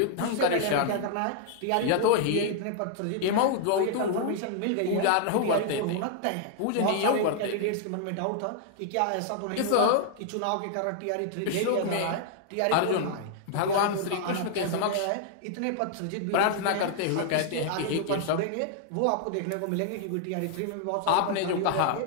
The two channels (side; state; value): both; different; correlation -0.01